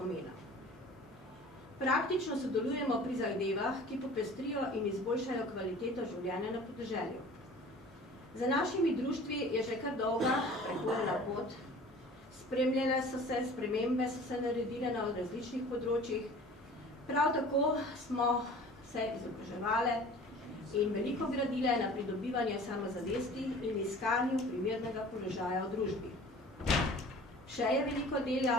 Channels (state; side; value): normal; both; correlation 0.45